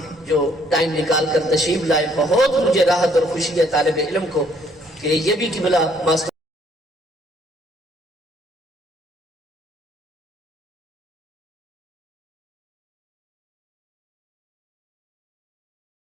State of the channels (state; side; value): normal; both; correlation 0.65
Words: جو ٹائم نکال کر تشریف لائے، بہت مجھے راحت اور خوشی ہے طالب علم کو کہ یہ بھی قبلہ ماسٹر